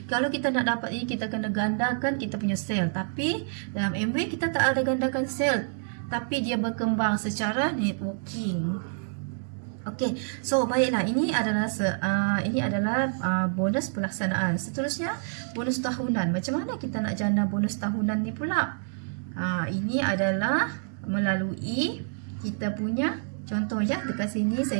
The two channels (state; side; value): silent; left; digital silence